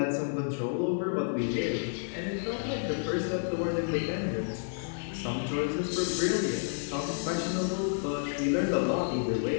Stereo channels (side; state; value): right; silent; digital silence